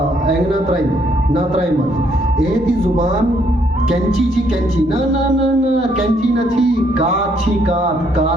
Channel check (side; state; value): both; normal; correlation 0.69